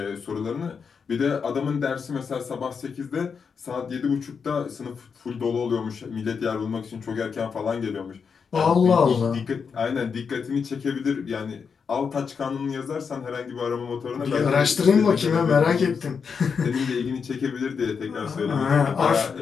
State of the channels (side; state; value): right; quieter; 6.0 dB